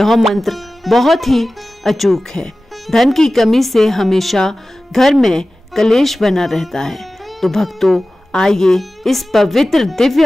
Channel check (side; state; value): both; normal; correlation 0.96